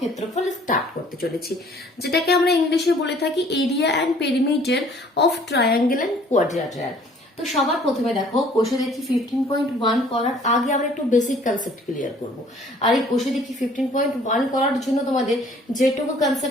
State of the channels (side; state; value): both; normal; correlation 0.56